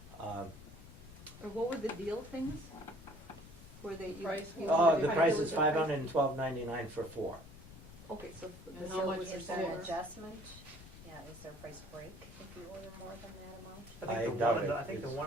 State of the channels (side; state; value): left; noise; rumble, 17 dB below the sound